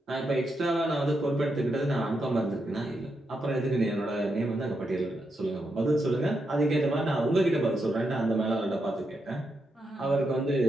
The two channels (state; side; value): normal; both; correlation 0.83